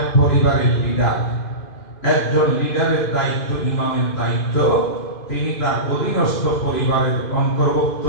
পরিবারের লিডার, একজন লিডারের দায়িত্ব, ইমামের দায়িত্ব, তিনি তার অধীনস্থ পরিবারের অন্তর্ভুক্ত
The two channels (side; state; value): right; late; 2.5 ms